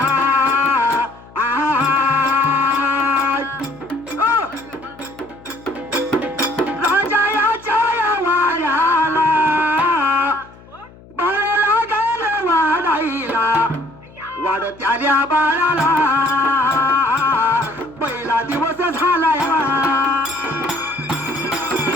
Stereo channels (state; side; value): noise; left; hum, 23 dB below the sound